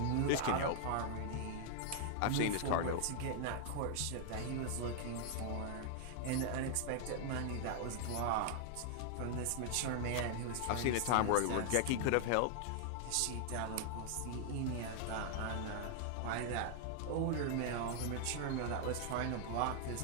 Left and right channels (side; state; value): both; different; correlation 0.00